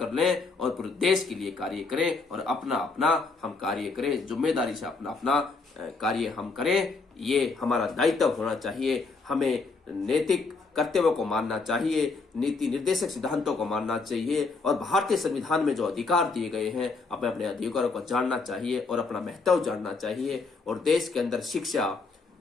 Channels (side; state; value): right; quieter; 4.1 dB